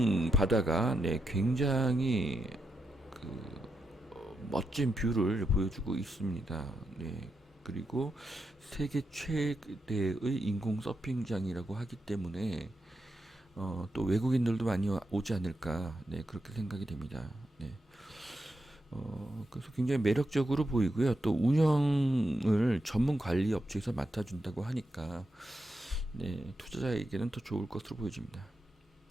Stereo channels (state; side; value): normal; both; correlation 0.86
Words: 바다가 네, 굉장히 그 멋진 뷰를 보여주고 있습니다. 네. 그리고 세계 최대의 인공 서핑장이라고 하기 때문에 또 외국인들도 많이 오지 않을까 네, 그렇게 생각이 됩니다. 네. 그래서 굉장히 매력적으로 보이고요. 또 운영을 전문 관리 업체에서 맡아준다고 하니까 네, 투자자에게는 더 좋을 것으로 보여집니다.